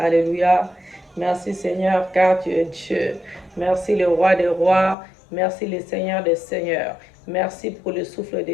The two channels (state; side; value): drops out; right; at 5.0 s